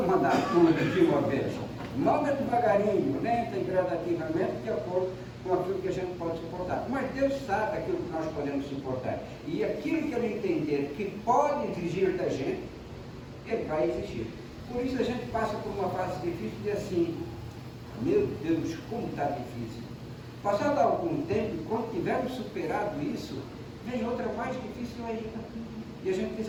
mandar tudo de uma vez. Manda devagarinho, lenta e gradativamente, de acordo com aquilo que a gente pode suportar. Mas Deus sabe aquilo que nós podemos suportar. E aquilo que Ele entender que pode exigir da gente, Ele vai exigir. Por isso a gente passa por uma fase difícil e assim: meu Deus, como está difícil. Passado algum tempo, quando tivermos superado isso, vem outra mais difícil ainda. E a gente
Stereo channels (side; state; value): both; identical; correlation 1.00